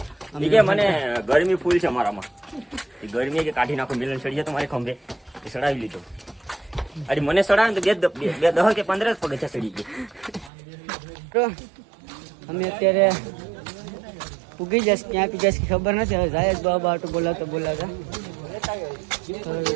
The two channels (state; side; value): drops out; left; at 10.5 s